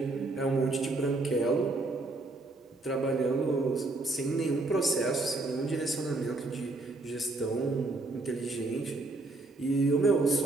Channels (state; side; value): quieter; left; 3.1 dB